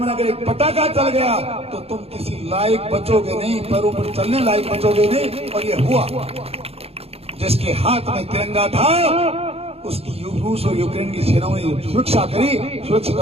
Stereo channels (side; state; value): left; late; 0.29 ms